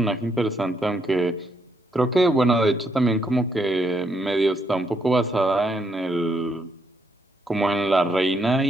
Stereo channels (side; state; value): both; normal; correlation 0.75